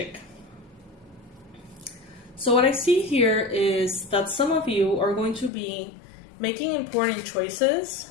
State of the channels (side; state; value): right; drops out; at 5.5 s